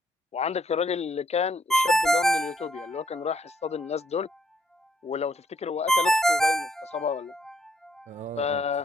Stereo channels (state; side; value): normal; both; correlation 0.70